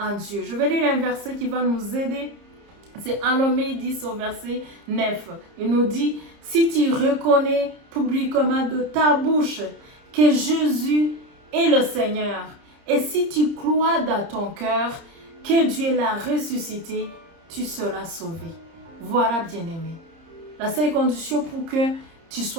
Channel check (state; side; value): late; left; 30 ms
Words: Dieu. Je vais lire un verset qui va nous aider. C'est Enommé 10 au verset 9. Il nous dit, si tu reconnais publiquement de ta bouche que Jésus est le Seigneur, et si tu crois dans ton cœur que Dieu l'a ressuscité, tu seras sauvé. Voilà, bien-aimé. La seule condition pour que tu